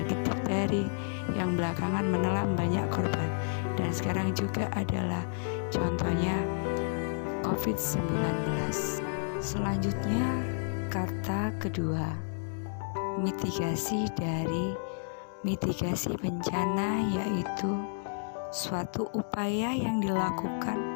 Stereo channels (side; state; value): right; silent; 57 dB below the other